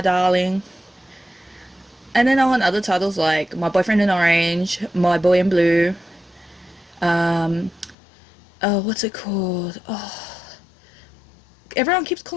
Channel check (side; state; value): right; drops out; at 8.0 s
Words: Darling. And then I want other titles like My Boyfriend in Orange, My Boy in Blue, oh, what's it called? Oh, everyone keeps